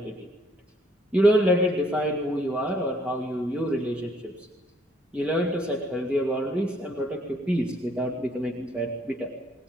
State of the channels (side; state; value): both; normal; correlation 0.65